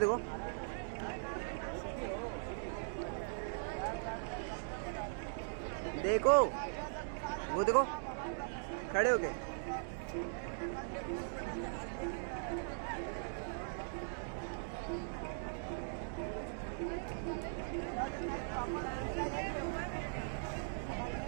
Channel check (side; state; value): left; silent; digital silence